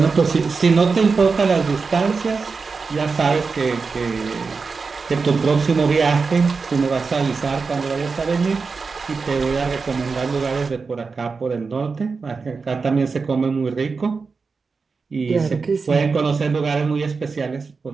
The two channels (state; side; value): quieter; left; 4.7 dB